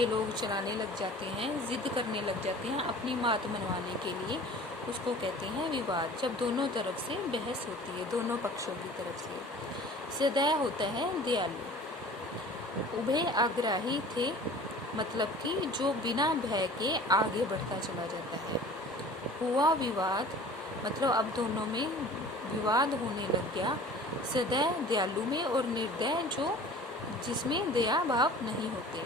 लोग चलाने लग जाते हैं, जिद करने लग जाते हैं अपनी बात मनवाने के लिए, उसको कहते हैं विवाद। जब दोनों तरफ से बहस होती है, दोनों पक्षों की तरफ से। सदय होता है दयालु। उभय आग्राही थे, मतलब कि जो बिना भय के आगे बढ़ता चला जाता है। हुआ विवाद, मतलब अब दोनों में विवाद होने लग गया। सदय दयालु में, और निर्दय जो जिसमें दया भाव नहीं होते।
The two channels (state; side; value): normal; both; correlation 0.44